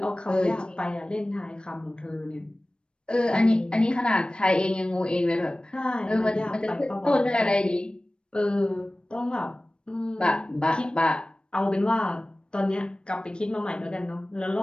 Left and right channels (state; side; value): late; right; 0.054 ms